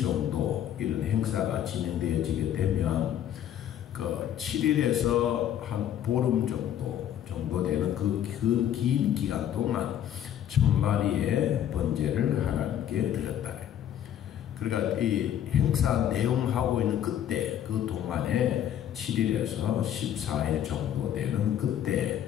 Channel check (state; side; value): quieter; right; 10.5 dB